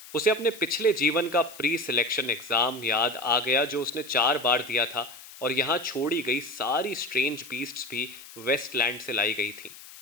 उसे अपने पिछले जीवन का प्री सिलेक्शन एग्जाम याद आ गया जो उसने 4 बार दिया था, और यहाँ छोड़ी गई सारी स्ट्रेंज बीस्ट्स भी वेस्टलैंड से लाई गई थीं।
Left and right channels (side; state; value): left; noise; hiss, 17 dB below the sound